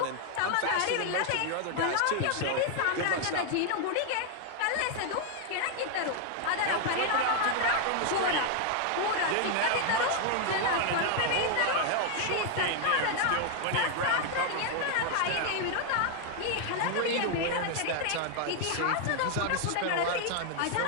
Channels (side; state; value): both; different; correlation 0.00